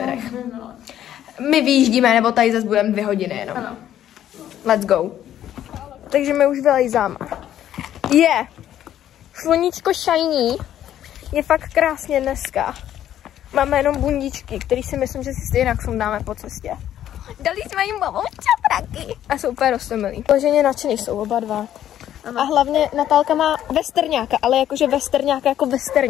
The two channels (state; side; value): quieter; right; 11.4 dB